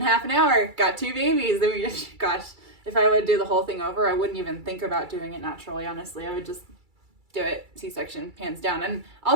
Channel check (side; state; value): left; late; 2.3 ms